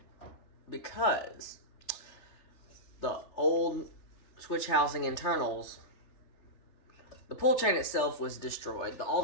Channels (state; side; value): late; right; 3.3 ms